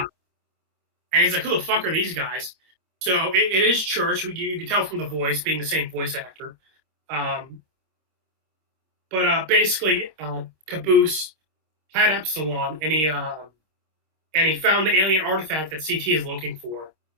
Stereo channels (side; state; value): left; late; 26 ms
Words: he's like, who the fuck are these guys? So it is Church. You can tell from the voice, being the same voice actor. But basically, Caboose had Epsilon, and he found the alien artifact that CT is looking for,